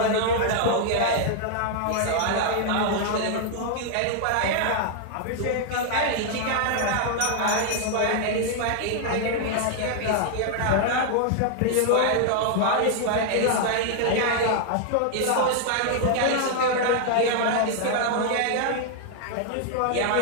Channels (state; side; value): different; both; correlation 0.00